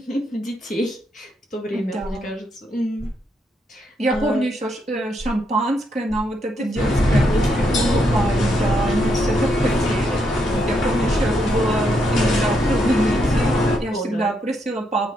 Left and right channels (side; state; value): both; normal; correlation 0.78